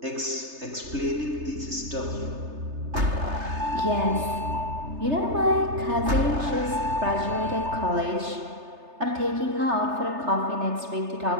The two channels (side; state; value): left; late; 3.3 ms